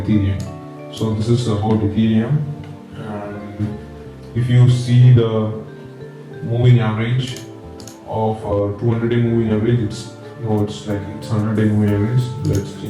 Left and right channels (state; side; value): identical; both; correlation 1.00